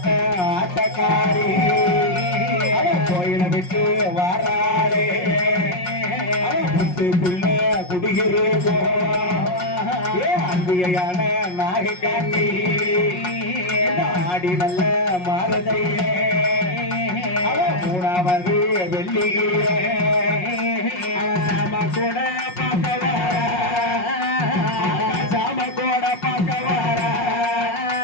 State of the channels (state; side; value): late; right; 5.5 ms